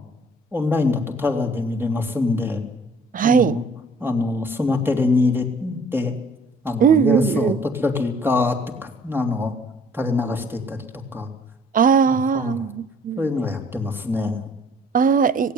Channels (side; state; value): both; normal; correlation 0.56